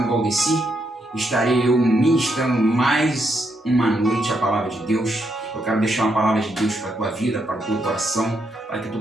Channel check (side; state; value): both; normal; correlation 0.79